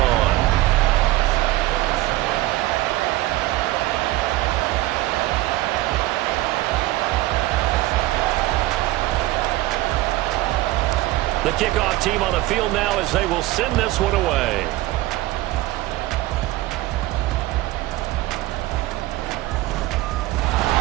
The kickoff team on the field now as they will send this one away.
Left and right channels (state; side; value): quieter; left; 17.4 dB